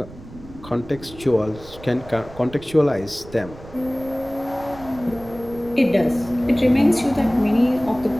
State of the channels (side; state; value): right; noise; rumble, 18 dB below the sound